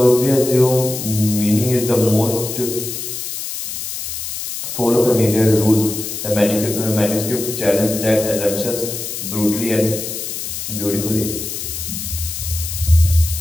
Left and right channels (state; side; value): noise; left; hiss, 6 dB below the sound